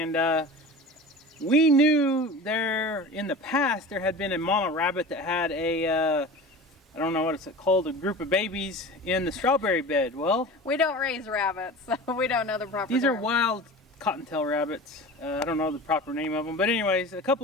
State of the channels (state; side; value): normal; both; correlation 0.35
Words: we knew there in the past there had been a mama rabbit that had a I don't know what it's called, a group of babies in the strawberry bed. Well, we don't raise rabbits, so we don't know the proper These term. are wild cottontail rabbits. I don't know the proper name of them. But anyways, a